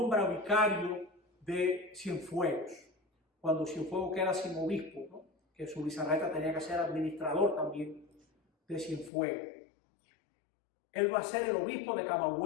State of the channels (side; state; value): right; drops out; at 9.1 s